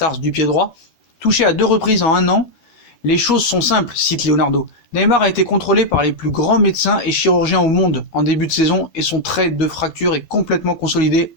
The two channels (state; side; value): late; right; 12 ms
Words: du pied droit. Touché à 2 reprises en 1 an, les choses sont simples, cite Leonardo. Neymar a été contrôlé par les plus grands médecins et chirurgiens au monde en début de saison et son trait de fracture est complètement consolidé